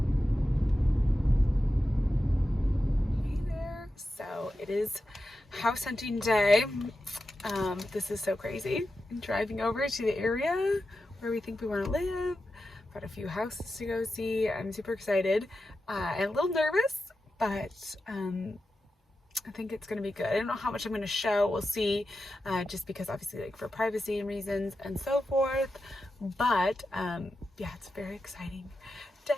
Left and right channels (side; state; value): both; normal; correlation 0.91